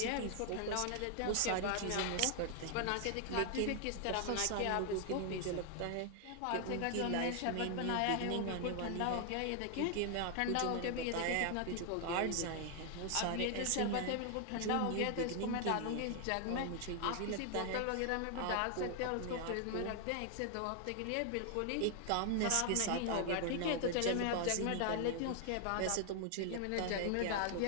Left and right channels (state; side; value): different; both; correlation 0.00